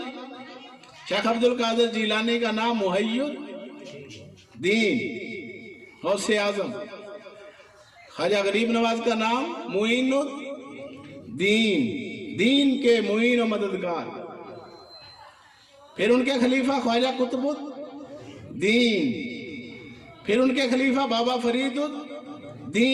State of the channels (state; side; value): identical; both; correlation 1.00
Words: शेख अब्दुल कादिर जिलानी का नाम मुहय्यिद दीन, गौसे आजम। ख्वाजा गरीब नवाज का नाम मुईनुद दीन, दीन के मुईन और मददगार। फिर उनके खलीफा ख्वाजा कुतुबुद दीन, फिर उनके खलीफा बाबा फरीदुद